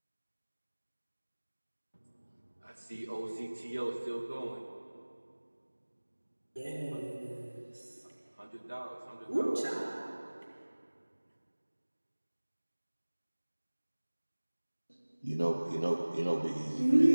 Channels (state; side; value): inverted; both; correlation -1.00